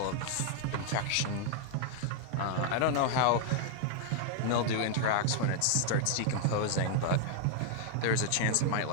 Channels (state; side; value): different; both; correlation 0.00